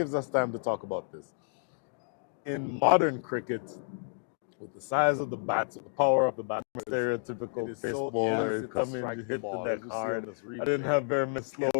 us time to talk about this. In modern cricket, with the size of the bats, the power of the bat, stereotypical pace bowler, you come in, you hit the deck hard. I didn't have very many slow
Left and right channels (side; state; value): right; silent; digital silence